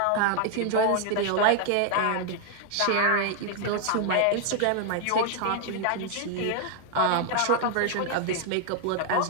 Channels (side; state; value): both; different; correlation 0.00